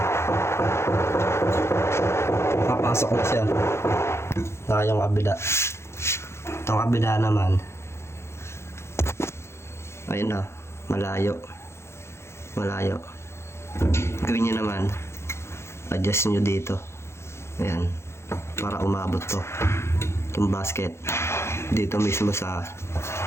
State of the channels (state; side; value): late; right; 0.13 ms